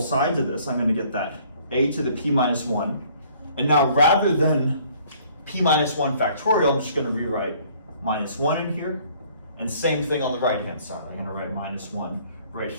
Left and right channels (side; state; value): both; inverted; correlation -0.58